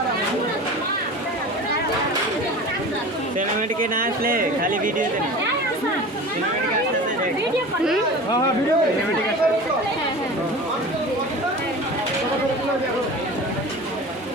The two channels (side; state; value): both; normal; correlation 0.35